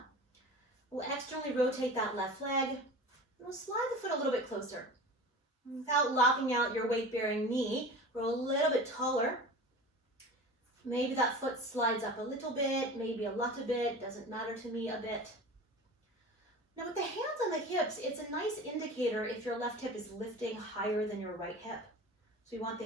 We'll externally rotate that left leg. And we'll slide the foot a little bit closer. Without locking out your weight-bearing knee, roll a little bit taller. Maybe that foot slides up a little bit, maybe a lot a bit, doesn't matter to me a bit. Now with the hands on the hips, it's a nice indicator if your left hip is lifting higher than your right hip. So you want the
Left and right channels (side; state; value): both; normal; correlation 0.35